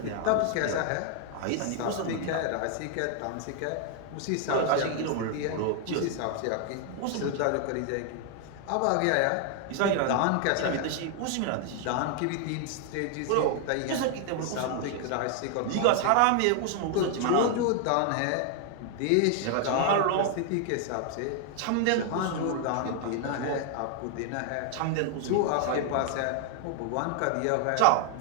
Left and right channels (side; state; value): both; different; correlation 0.00